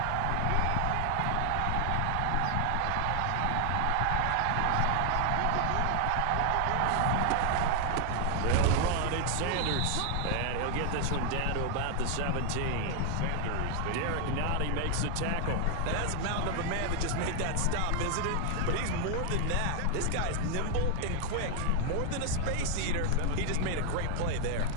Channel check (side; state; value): both; different; correlation 0.00